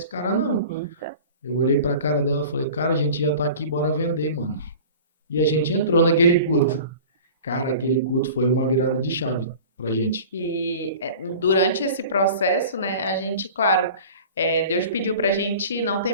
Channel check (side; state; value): both; inverted; correlation -0.40